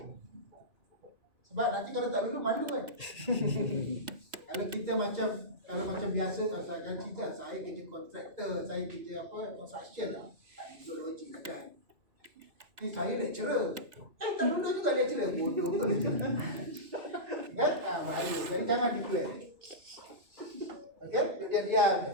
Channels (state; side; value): late; left; 2.6 ms